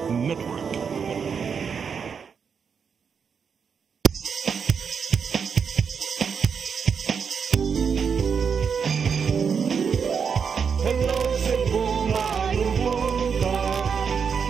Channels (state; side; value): quieter; left; 6.4 dB